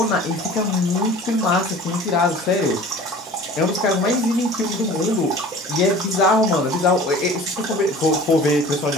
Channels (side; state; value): both; normal; correlation 0.43